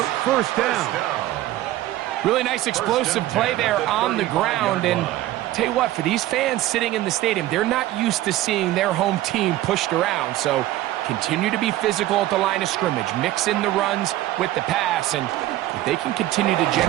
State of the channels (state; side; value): quieter; left; 15.3 dB